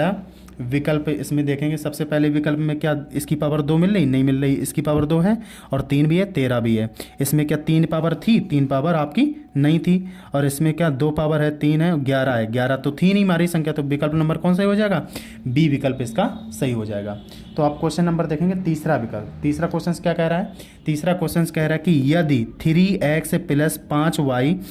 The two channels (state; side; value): identical; both; correlation 1.00